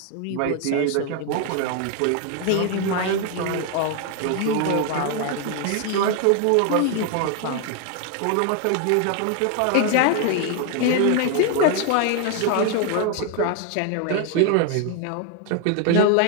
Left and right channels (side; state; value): both; different; correlation 0.01